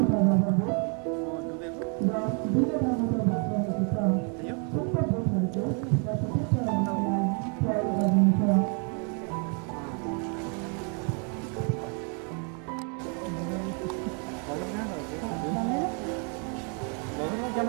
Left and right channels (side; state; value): left; quieter; 38.9 dB